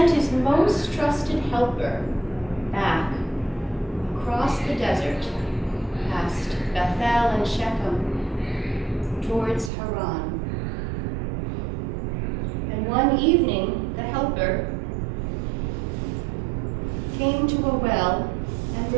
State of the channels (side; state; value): left; drops out; at 9.7 s